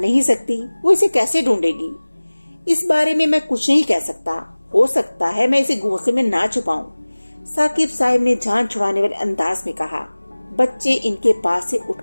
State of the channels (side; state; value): both; inverted; correlation -1.00